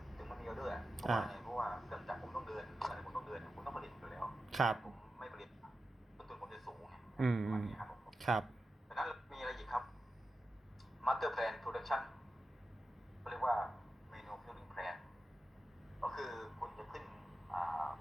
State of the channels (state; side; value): normal; both; correlation 0.91